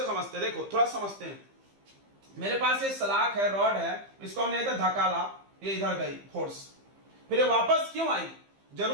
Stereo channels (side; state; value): left; late; 15 ms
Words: समझते, देखो थोड़ा समझते हैं। मेरे पास ये सलाख है, रॉड है, इसको हमने इधर धकाला, ये इधर गई फोर्स, फिर ये वापस क्यों आई,